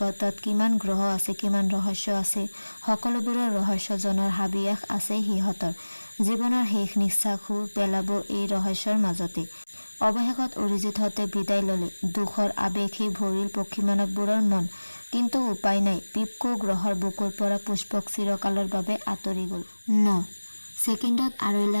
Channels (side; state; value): both; inverted; correlation -1.00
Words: কিমান গ্ৰহ আছে, কিমান ৰহস্য আছে, সকলোবোৰৰ ৰহস্য জনাৰ হাবিয়াস আছে সিহঁতৰ। জীৱনৰ শেষ নিশ্বাসো পেলাব এই ৰহস্যৰ মাজতে। অৱশেষত অৰিজিতহঁতে বিদায় ল'লে। দুখৰ আৱেগেই ভৰিল পক্ষী মানৱবোৰৰ মন। কিন্তু উপায় নাই। পিপকো গ্ৰহৰ বুকুৰ পৰা পুষ্পক চিৰকালৰ বাবে আঁতৰি গ'ল। ৯ ছেকেণ্ডত ২.৫